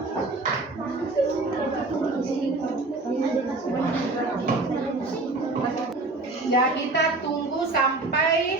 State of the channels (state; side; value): quieter; left; 3.2 dB